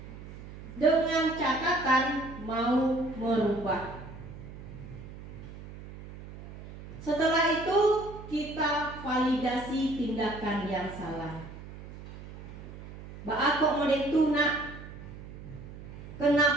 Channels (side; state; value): right; noise; hum, 14 dB below the sound